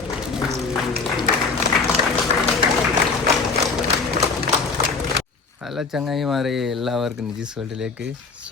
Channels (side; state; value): right; quieter; 4.6 dB